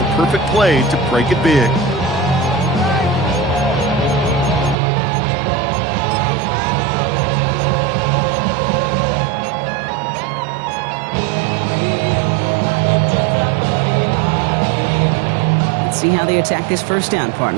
a perfect play to break it big. Let's see how they attack this 1st down,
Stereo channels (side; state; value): left; drops out; at 4.8 s